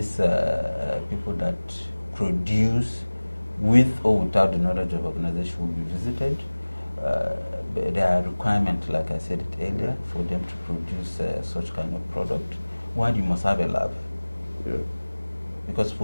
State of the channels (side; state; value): both; inverted; correlation -1.00